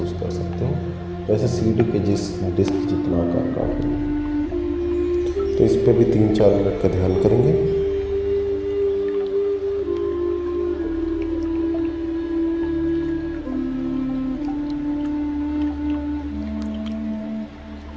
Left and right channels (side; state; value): both; identical; correlation 1.00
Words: कर सकते हो, वैसे सीढ़ी के डिस्क जितना आकार का है। तो इस पे भी 3-4 मिनट का ध्यान करेंगे।